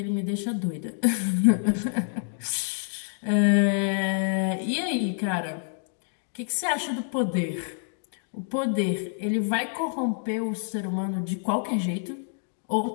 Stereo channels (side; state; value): right; silent; digital silence